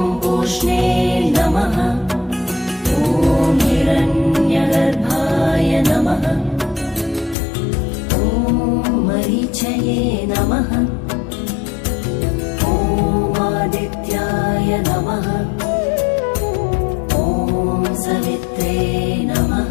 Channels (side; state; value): right; drops out; at 7.4 s